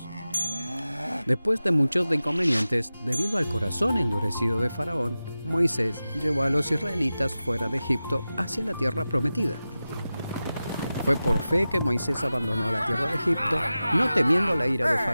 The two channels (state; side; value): inverted; both; correlation -0.95